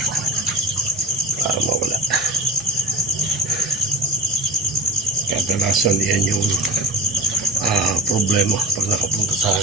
para mawala. Kadalasan yan yung problema pag nakapunta sa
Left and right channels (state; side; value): normal; both; correlation 0.32